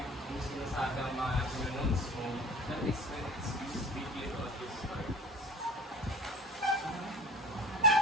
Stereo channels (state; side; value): normal; both; correlation 0.41